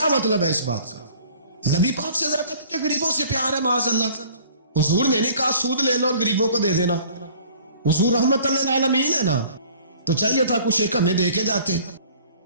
مطلب ہے اس بات کا؟ نبی پاک سے زیادہ تجھے غریبوں سے پیار ہے معاذ اللہ. حضور نے نہیں کہا سود لے لو اور غریبوں کو دے دینا. حضور رحمت للعالمین ہے نا، تو چاہیے تھا کچھ ایک ہمیں دے کے جاتے.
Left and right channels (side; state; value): both; inverted; correlation -0.51